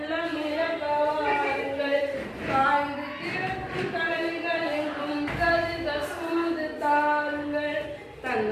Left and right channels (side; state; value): both; identical; correlation 1.00